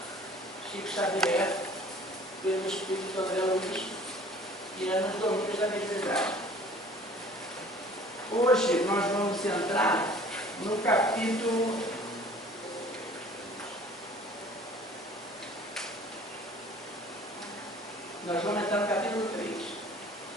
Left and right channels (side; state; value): both; normal; correlation 0.50